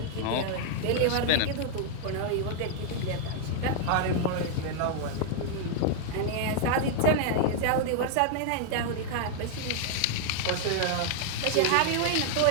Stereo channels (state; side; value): different; both; correlation 0.00